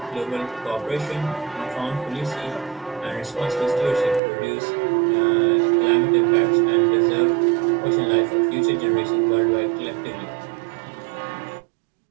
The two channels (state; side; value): drops out; left; at 4.2 s